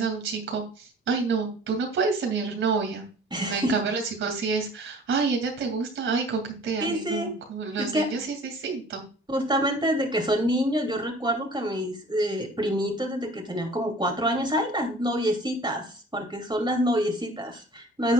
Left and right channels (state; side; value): normal; both; correlation 0.48